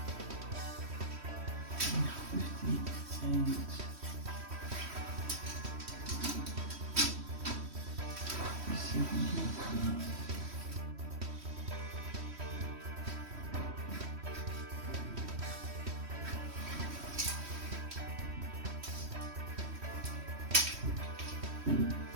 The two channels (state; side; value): late; left; 3.1 ms